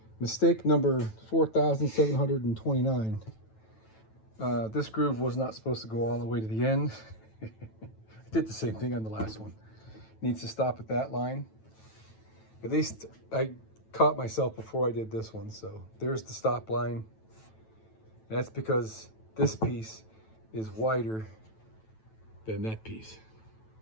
mistake number 4,729. This groove was not supposed to go all the way to the end. I did the same thing on the last one. Needs to stop at that line. At least I caught myself before I did this one. So there's the stop line. That's because this piece is wider than that piece.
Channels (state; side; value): late; right; 9.1 ms